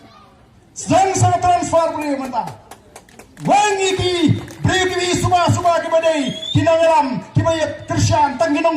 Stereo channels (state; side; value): identical; both; correlation 1.00